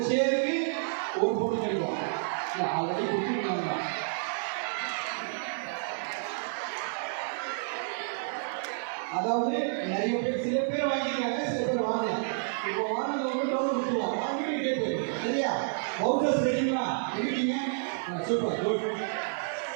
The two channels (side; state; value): left; silent; digital silence